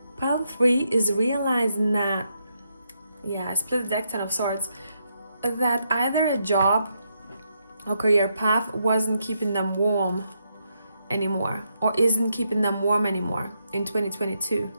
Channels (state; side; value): inverted; both; correlation -0.80